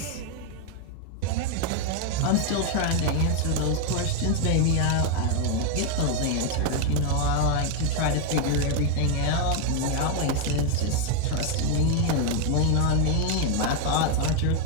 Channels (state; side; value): different; both; correlation 0.01